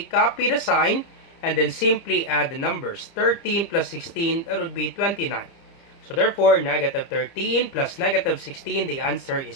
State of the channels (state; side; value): late; right; 30 ms